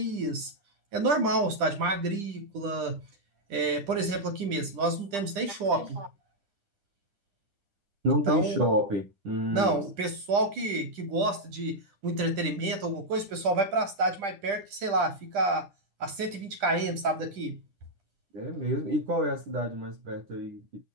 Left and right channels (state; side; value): late; left; 10 ms